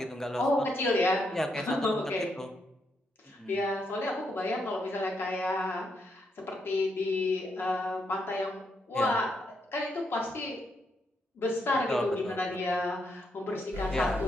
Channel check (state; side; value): normal; both; correlation 0.79